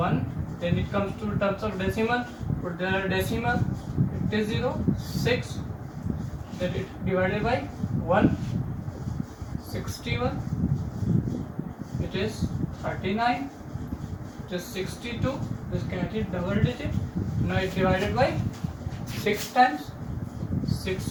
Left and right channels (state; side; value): identical; both; correlation 1.00